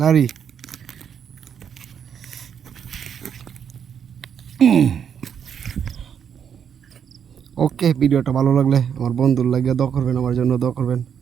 lari. ওকে, ভিডিওটা ভালো লাগলে আমার বন্ধুর লাগিয়ে দোয়া করবেন, আমার জন্য দোয়া করবেন।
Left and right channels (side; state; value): left; quieter; 8.0 dB